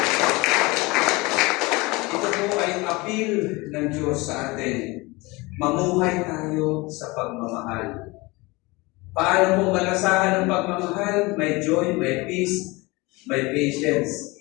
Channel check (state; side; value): quieter; right; 24.0 dB